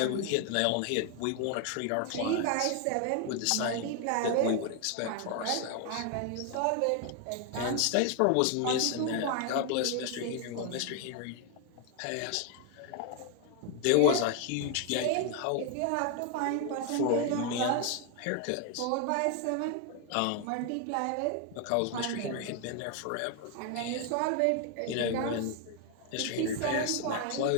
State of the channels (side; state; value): both; different; correlation 0.00